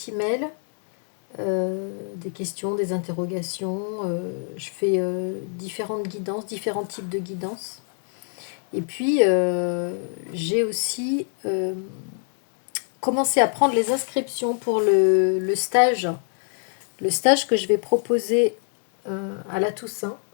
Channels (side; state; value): right; silent; 58 dB below the other